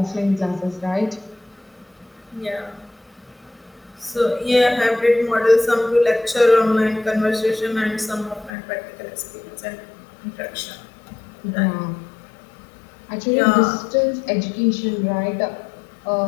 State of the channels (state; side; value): drops out; right; at 8.5 s